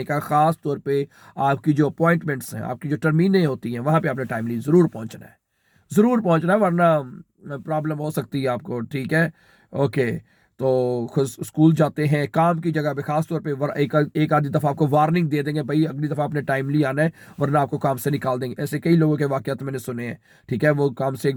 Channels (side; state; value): both; identical; correlation 1.00